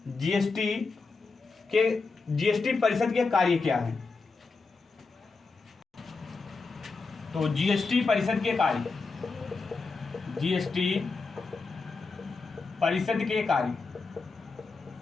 जीएसटी परिषद के कार्य क्या हैं। तो जीएसटी परिषद के कार्य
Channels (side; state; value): right; quieter; 4.2 dB